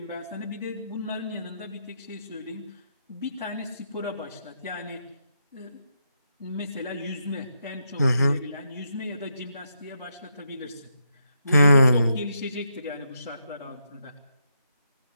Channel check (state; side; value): inverted; both; correlation -0.81